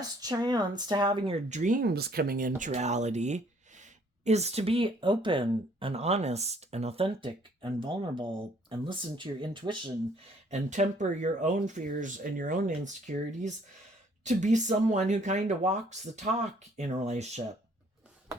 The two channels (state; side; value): normal; both; correlation 0.61